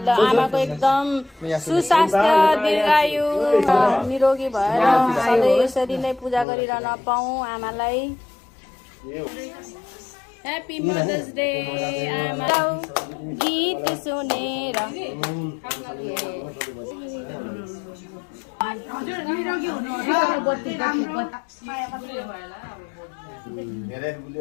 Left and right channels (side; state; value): right; drops out; at 6.5 s